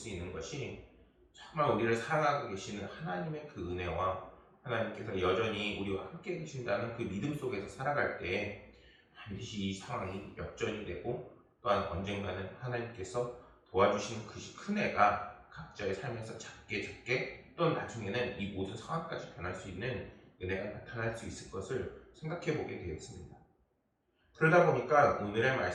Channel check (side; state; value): both; identical; correlation 1.00